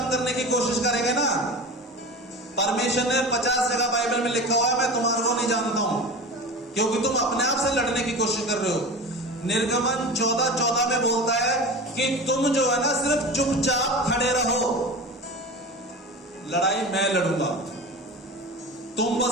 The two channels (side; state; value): both; normal; correlation 0.31